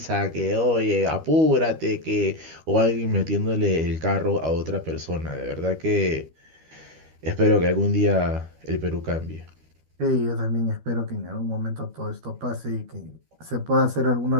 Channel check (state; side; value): late; left; 13 ms